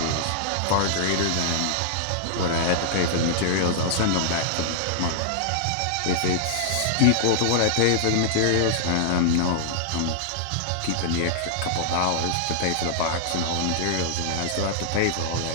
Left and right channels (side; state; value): both; different; correlation -0.01